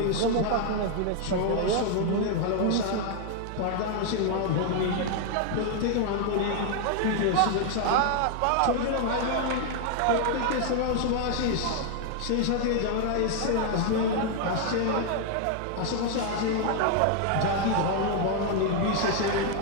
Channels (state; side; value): different; both; correlation 0.00